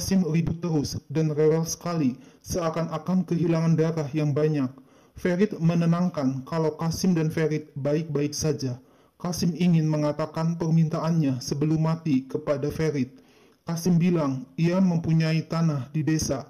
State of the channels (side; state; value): both; identical; correlation 1.00